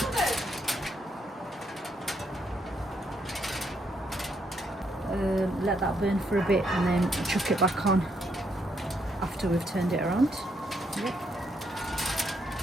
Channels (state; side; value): normal; both; correlation 0.75